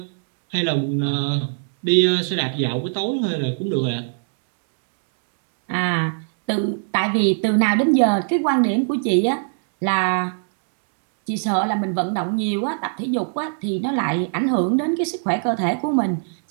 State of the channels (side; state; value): left; silent; digital silence